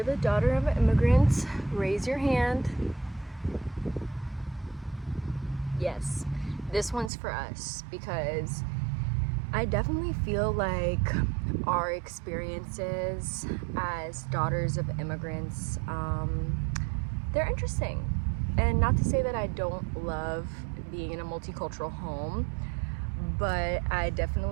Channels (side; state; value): left; drops out; at 7.1 s